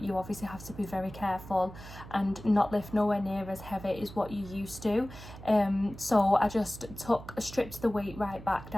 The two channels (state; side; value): noise; right; hum, 15 dB below the sound